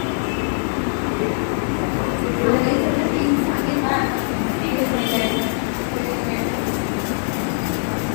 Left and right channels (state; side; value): silent; right; 65 dB below the other